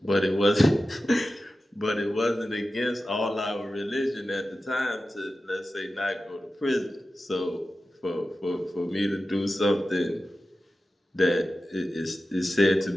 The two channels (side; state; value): both; normal; correlation 0.94